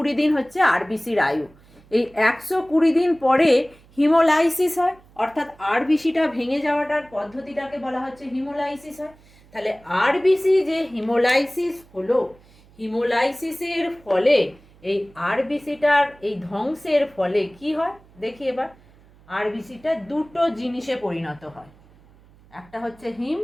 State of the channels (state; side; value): noise; right; hum, 27 dB below the sound